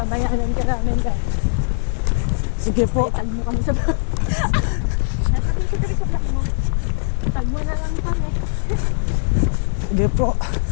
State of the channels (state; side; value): silent; right; digital silence